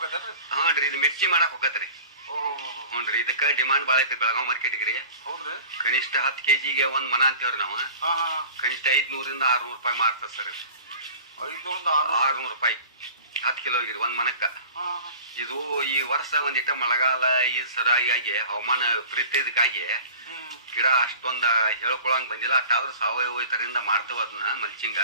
ರೀ, ಇದು ಮಿರ್ಚಿ ಮಾಡಕ್ ಹೋಗತ್ರಿ. ಹ್ಞೂ ರೀ, ಇದಕ್ಕೆ ಡಿಮಾಂಡ್ ಭಾಳ ಐತಿ ಬೆಳಗಾವ್ ಮಾರ್ಕೆಟ್ಗೆ ರೀ. ಹೌದ್ರಿ? ಕನಿಷ್ಠ 10 kgಗೆ ಒಂದ್ ಮನ ಅಂತೇವ್ರಿ ನಾವು. ಕನಿಷ್ಠ 500ರಿಂದ 600 ರೂಪಾಯಿ ಮಾರ್ತದ ಸರ್. 600 ರೂಪಾಯಿ 10 ಕಿಲೋಗಿರಿ ಒಂದ್ ಮನಕ್ಕ. ಇದು ಈ ವರ್ಷ ಒಂದಿಟ್ಟ ಮಳೆಗಾಲ ಈ ಸರಿಯಾಗಿ ಹವಾಮಾನ ವಿಪರೀತಕ್ಕಾಗಿ ಗಿಡ ಅಷ್ಟೊಂದ ಹೇಳ್ಕೊಳಂಗ್ ಬಂದಿಲ್ಲ. ಅಷ್ಟಾದ್ರೂ ಸಾವಯವ ಇದರಿಂದ ಮಾಡ್ತೇವ ಅದನ್ನ ಮಲ್ಚಿಂಗ.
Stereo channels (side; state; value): both; inverted; correlation -0.41